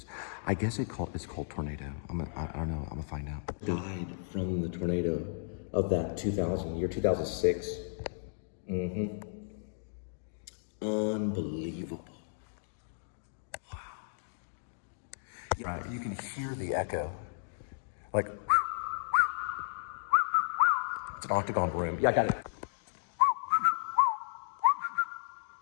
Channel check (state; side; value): silent; right; digital silence